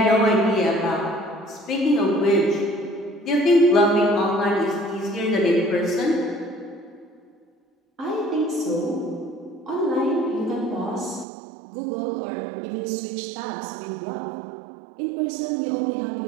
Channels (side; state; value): left; drops out; at 11.2 s